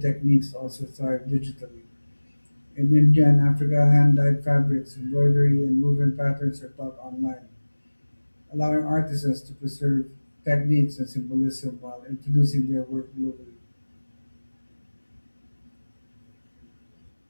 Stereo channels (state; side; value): inverted; both; correlation -1.00